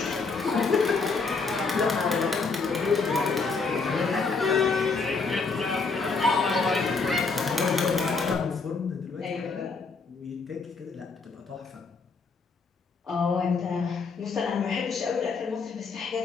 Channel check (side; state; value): right; quieter; 4.5 dB